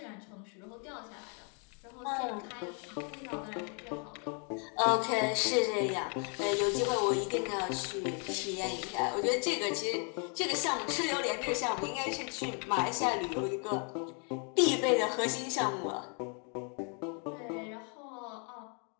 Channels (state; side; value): quieter; right; 38.2 dB